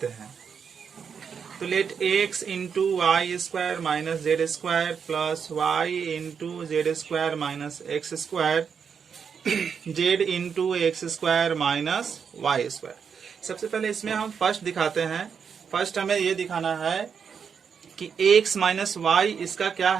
हैं। तो let x into Y square minus Z square plus Y into Z square minus X square Z into X square minus Y square. सबसे पहले इसमें हम फर्स्ट दिखाते हैं। फर्स्ट हमें ये दिखाना है कि x माइनस वाई इसका क्या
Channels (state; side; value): quieter; left; 6.7 dB